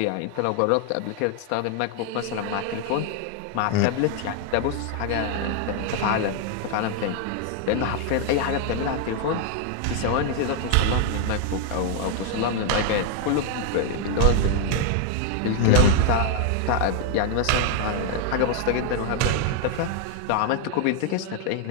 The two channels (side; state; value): both; different; correlation 0.01